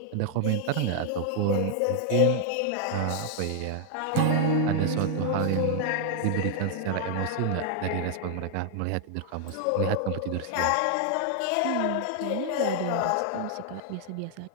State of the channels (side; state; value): both; different; correlation 0.00